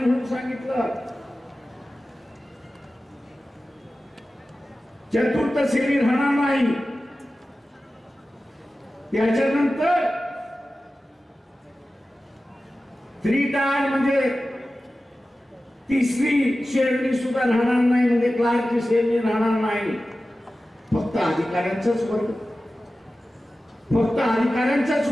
सांगितलं. चतुर्थ श्रेणी राहणार नाही. त्याच्यानंतर 3 टायर म्हणजे 3री श्रेणी सुद्धा राहणार नाही, म्हणजे क्लार्कची श्रेणी राहणार नाही. फक्त अधिकाऱ्यांचाच वर्ग, फक्त अधिकाऱ्यांचाच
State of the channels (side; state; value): both; normal; correlation 0.95